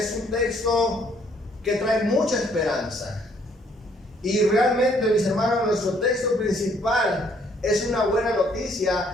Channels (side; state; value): both; normal; correlation 0.65